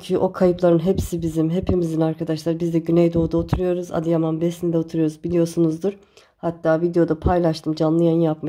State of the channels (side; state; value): both; identical; correlation 1.00